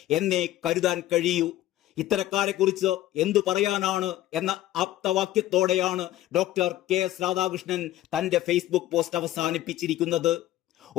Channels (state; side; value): quieter; right; 14.4 dB